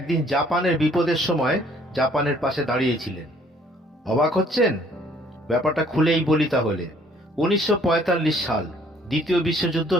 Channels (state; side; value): normal; both; correlation 0.60